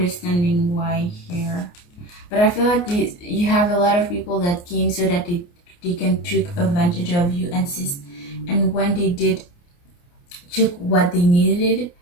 why here, but I feel like you have a lot of people that came so that they can take advantage of you, and when they did took what they needed,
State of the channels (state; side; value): late; right; 29 ms